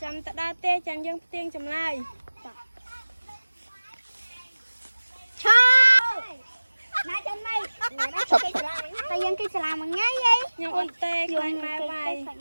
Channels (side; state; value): both; inverted; correlation -1.00